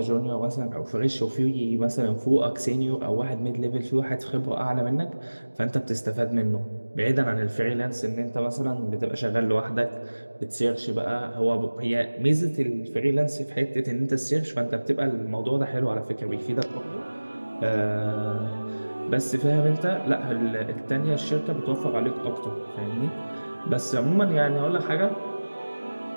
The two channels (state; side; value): inverted; both; correlation -1.00